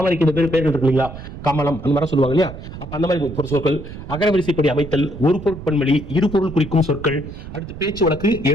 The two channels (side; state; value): right; noise; rumble, 12 dB below the sound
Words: இந்த பேர்கள் இருக்கு இல்லைங்களா, கமலம் அந்த மாதிரி சொல்லுவாங்க இல்லையா? அப்ப அந்த மாதிரி ஒரு சொற்கள், அகரவரிசைப்படி அமைத்தல், ஒரு பொருட்பன்மொழி, இரு பொருள் குறிக்கும் சொற்கள், அடுத்து பேச்சு வழக்கு,